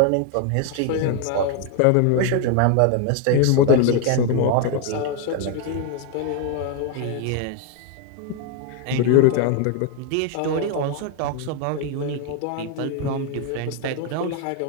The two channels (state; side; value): different; both; correlation 0.00